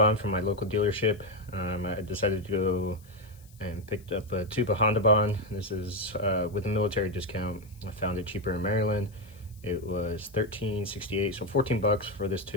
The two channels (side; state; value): left; noise; hiss, 27 dB below the sound